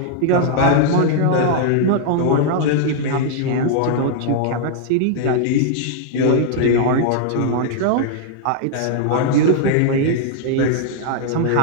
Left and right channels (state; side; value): different; both; correlation -0.01